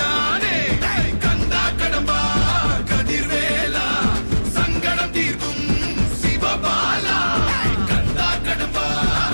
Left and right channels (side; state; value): both; inverted; correlation -1.00